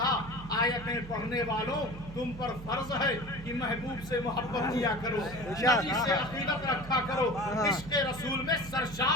आयतें पढ़ने वालों, तुम पर फर्ज है कि महबूब से मोहब्बत किया करो, नबी से अकीदत रखा करो, इश्क़ रसूल में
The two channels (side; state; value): right; noise; hum, 13 dB below the sound